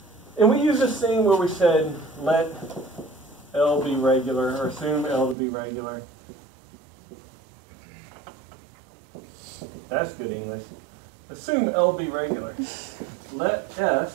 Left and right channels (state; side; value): drops out; left; at 5.4 s